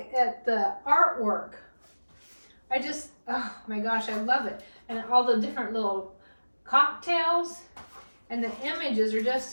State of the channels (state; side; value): inverted; both; correlation -1.00